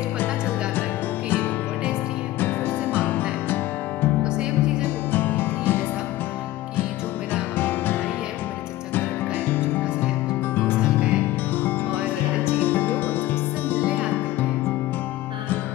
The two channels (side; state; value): right; quieter; 15.9 dB